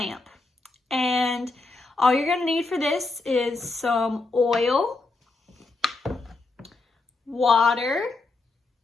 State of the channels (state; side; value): quieter; right; 3.5 dB